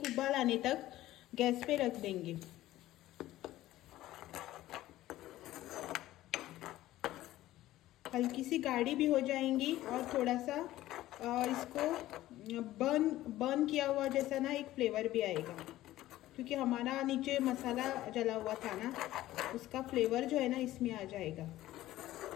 उबाल आने तक गैस पे रख देंगे। हल्की सी गाढ़ी भी हो जाएंगी और थोड़ा सा इसको बर्न किया हुआ जैसा ना एक फ्लेवर भी आएगा, क्योंकि हमारा नीचे मसाला जला हुआ था ना, उसका फ्लेवर जो है ना इसमें आ जाएगा।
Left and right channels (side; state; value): right; quieter; 15.2 dB